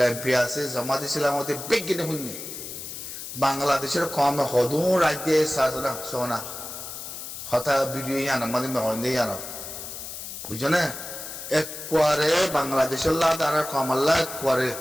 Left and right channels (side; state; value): left; noise; hiss, 9 dB below the sound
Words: এমপি আছে জমা দিয়েছিলাম হতে বেগিনে হইনি বাংলাদেশের কম হদু রাজ্যে সাজনা সোনা হতা ভিডিও ইয়ান আমাদের মেহন্দে ইয়ান বুঝছো না এক কোয়ারে বাংলাদেশের লাদ আর কমাল্লা এক কোয়ারে